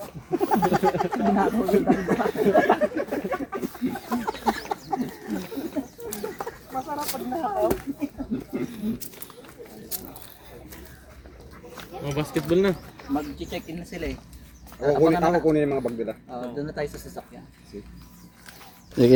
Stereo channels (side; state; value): both; identical; correlation 1.00